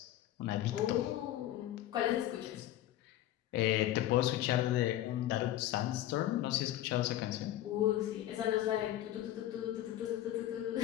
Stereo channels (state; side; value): quieter; right; 13.4 dB